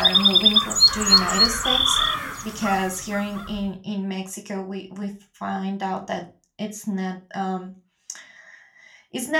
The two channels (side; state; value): both; identical; correlation 1.00